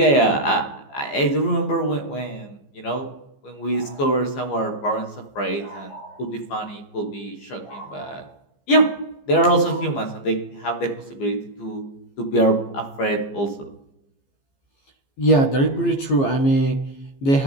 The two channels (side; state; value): right; late; 15 ms